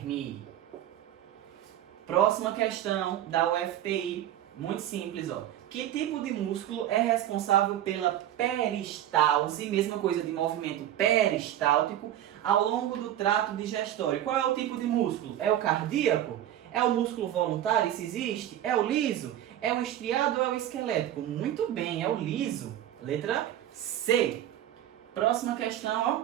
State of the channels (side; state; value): left; quieter; 12.0 dB